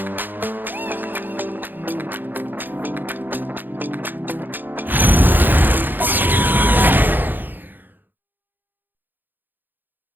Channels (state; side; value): late; left; 0.090 ms